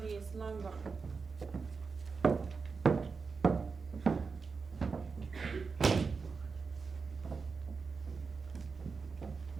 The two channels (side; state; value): left; quieter; 4.9 dB